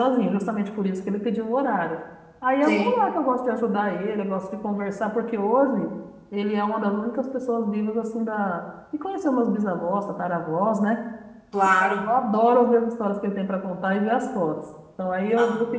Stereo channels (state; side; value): identical; both; correlation 1.00